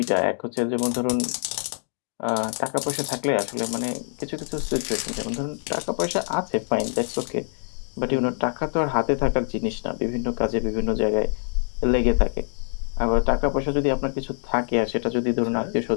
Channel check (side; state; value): right; silent; digital silence